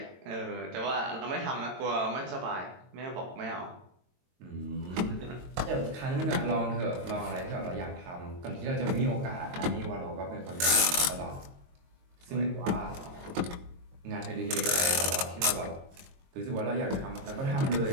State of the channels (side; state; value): left; late; 22 ms